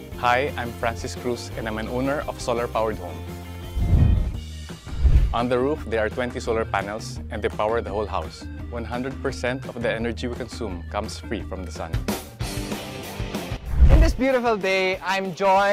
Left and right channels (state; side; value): identical; both; correlation 1.00